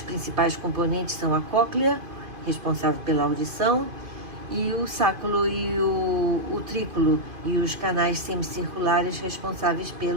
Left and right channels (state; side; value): late; left; 2.5 ms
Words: principais componentes são a cóclea, responsável pela audição, e o sáculo e o utrículo e os canais semicirculares responsáveis